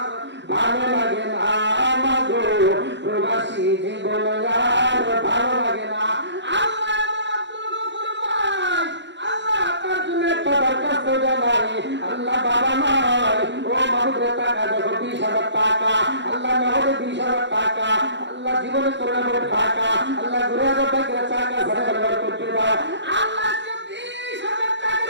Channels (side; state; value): left; late; 0.52 ms